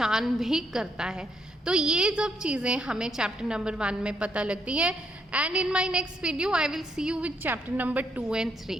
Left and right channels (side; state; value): both; normal; correlation 0.74